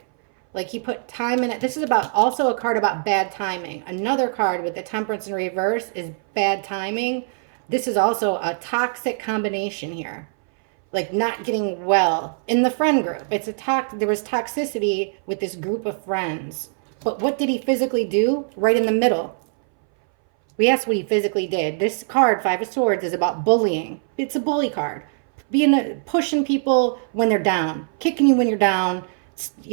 Like he put time in it. This is about also a card about bad timing. Another card with the Temperance in reverse is bad timing. This is also a toxic combination here, like not getting well in the friend group. There was toxicity with this group of friends. But what did he physically do? Right in the middle. We asked what he physically did. This card, Five of Swords, is about bullying. It's a bully card. Pushing people when they're down, kicking you when you're down,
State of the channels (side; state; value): left; silent; 61 dB below the other